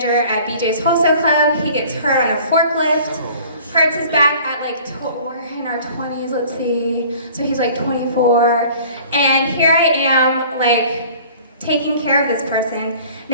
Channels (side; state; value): both; inverted; correlation -0.48